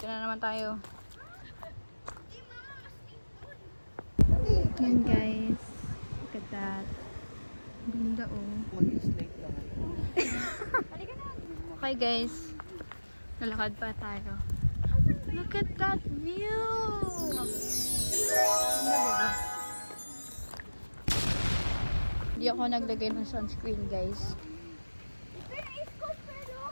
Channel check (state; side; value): inverted; both; correlation -1.00